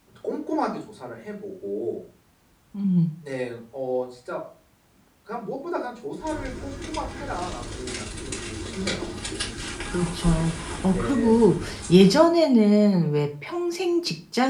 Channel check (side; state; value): both; identical; correlation 1.00